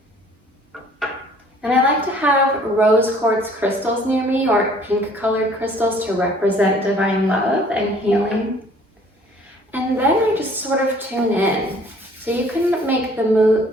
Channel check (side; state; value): both; normal; correlation 0.56